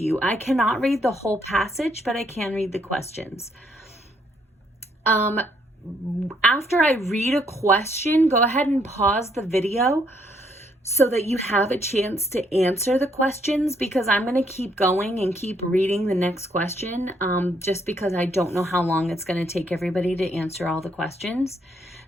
you. I cannot read the whole passage, but I can read the questions. After I read a question, go ahead and pause the video so that you have a chance to answer the questions, because I'm going to keep going and keep reading the next question just because I don't know how long it's going to take everybody to answer all the questions.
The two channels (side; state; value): both; normal; correlation 0.71